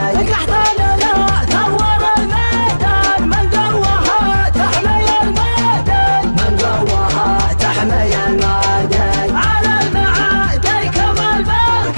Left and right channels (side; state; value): both; inverted; correlation -1.00